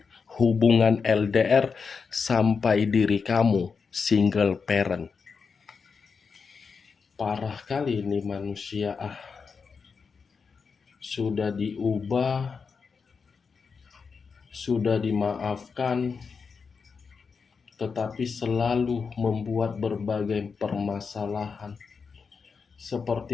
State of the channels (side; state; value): right; quieter; 5.4 dB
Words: hubungan LDR, sampai diri kamu single parent. Parah kali ini manusia. Sudah diubah, sudah dimaafkan, tetapi selalu membuat berbagai permasalahan.